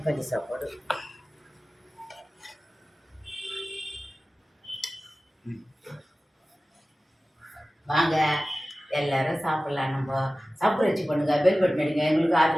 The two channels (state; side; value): normal; both; correlation 0.96